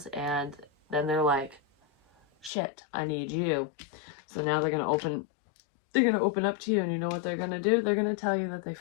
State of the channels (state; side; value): drops out; right; at 2.5 s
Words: And then they're like, shit, I need you. So now they're going to open up to you, and you know what they're going to do? They're going to tell you that they